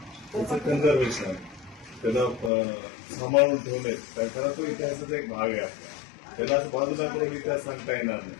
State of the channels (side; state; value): right; drops out; at 2.5 s